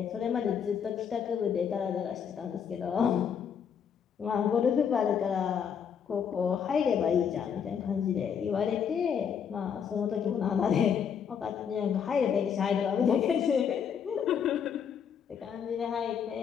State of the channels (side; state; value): right; quieter; 7.5 dB